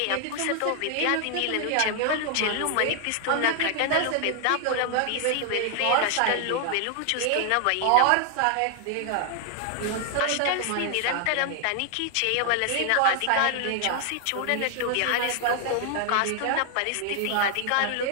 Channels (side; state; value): both; different; correlation 0.00